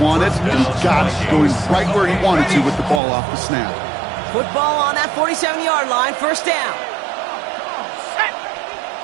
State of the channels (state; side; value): drops out; left; at 3.0 s